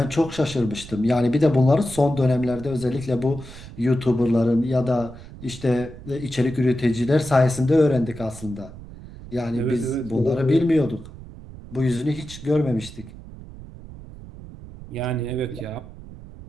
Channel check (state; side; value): noise; right; rumble, 15 dB below the sound